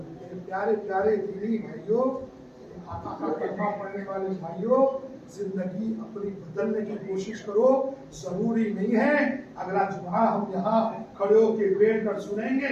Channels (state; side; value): identical; both; correlation 1.00